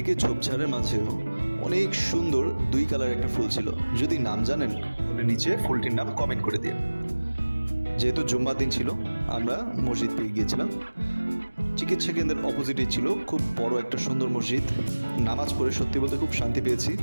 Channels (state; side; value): inverted; both; correlation -1.00